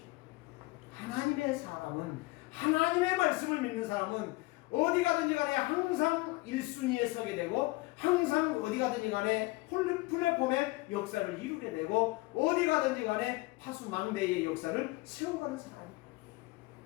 하나님의 사람은, 하나님의 말씀을 믿는 사람은 어디 가든지 간에 항상 1순위에 서게 되고 항상 어디 가든지 간에 플랫폼의 역사를 이루게 되고 어디 가든지 간에 파수망대의 역사를 세워가는 사람이에요.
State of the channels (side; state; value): right; quieter; 22.3 dB